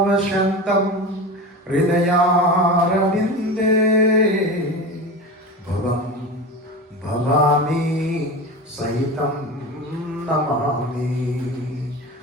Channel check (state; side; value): normal; both; correlation 0.28